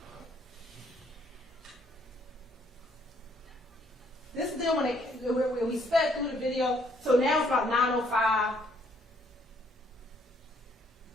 This is them when we sped through the video. So now it's about 9:05.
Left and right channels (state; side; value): normal; both; correlation 0.67